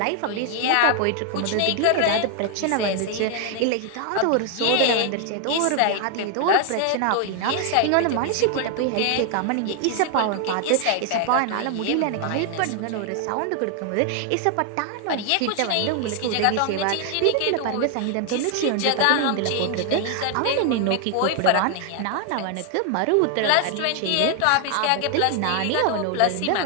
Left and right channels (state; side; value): different; both; correlation 0.00